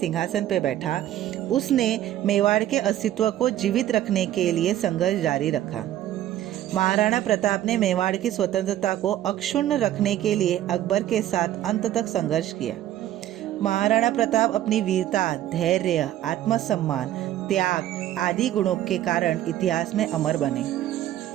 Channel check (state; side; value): quieter; left; 12.8 dB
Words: पर बैठा। उसने मेवाड़ के अस्तित्व को जीवित रखने के लिए संघर्ष जारी रखा। महाराणा प्रताप ने मेवाड़ की स्वतंत्रता को अक्षुण्ण रखने के लिए अकबर के साथ अंत तक संघर्ष किया। महाराणा प्रताप अपनी वीरता, धैर्य, आत्मसम्मान, त्याग आदि गुणों के कारण इतिहास में अमर बने।